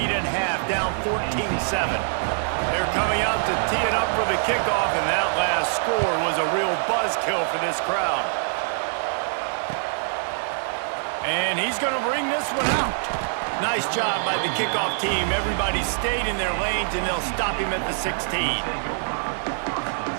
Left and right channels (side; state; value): left; silent; 62 dB below the other